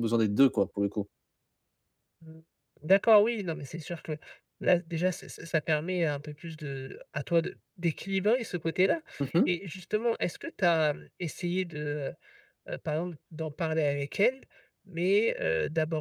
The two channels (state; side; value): identical; both; correlation 1.00